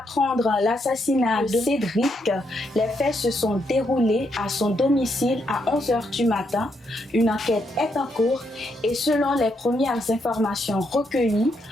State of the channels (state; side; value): normal; both; correlation 0.78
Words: L'assassinat de Cédric. Les faits se sont déroulés à son domicile à 11h du matin. Une enquête est en cours et selon les premières informations recueillies,